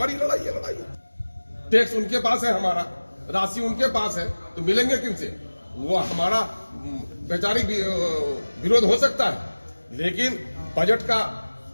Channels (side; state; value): both; inverted; correlation -1.00